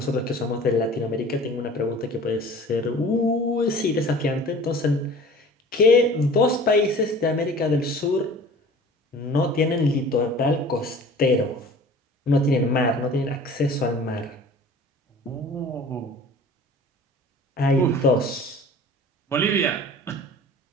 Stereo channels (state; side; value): normal; both; correlation 0.44